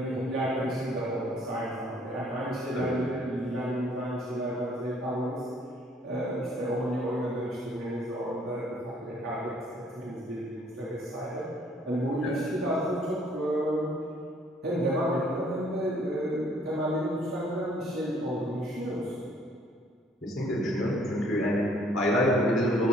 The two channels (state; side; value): normal; both; correlation 0.61